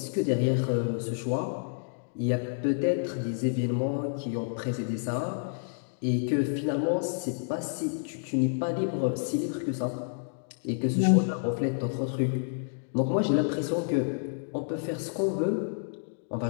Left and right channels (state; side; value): silent; right; digital silence